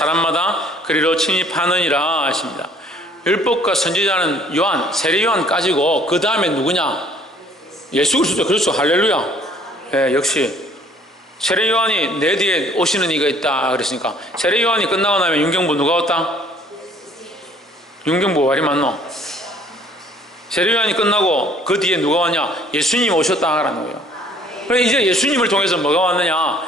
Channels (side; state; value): both; normal; correlation 0.58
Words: 그리로 침입하느니라 하십니다. 율법과 선지자는 요한, 세례 요한까지고 그 다음에 누구냐? 예수 그리스도. 그렇죠. 할렐루야. 예, 역시 세례 요한이 내 뒤에 오시는 이가 있다 그랬으니까, 세례 요한이 끝나고 나면 윤경부 누가 왔다? 윤경부 말이 맞노? 세례 요한이 끝나고 그 뒤에 누가 왔냐? 예수님이 오셨다라는 거예요. 그래, 이제 예수님을 통해서 뭐가 왔느냐?